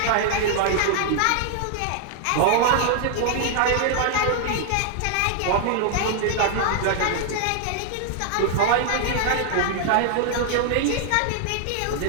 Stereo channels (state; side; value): different; both; correlation 0.00